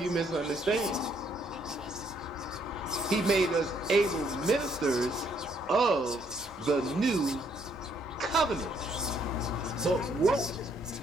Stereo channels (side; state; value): both; normal; correlation 0.69